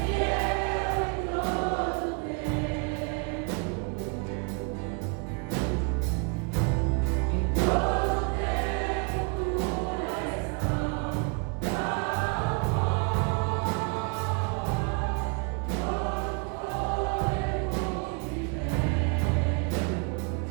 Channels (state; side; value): quieter; left; 33.6 dB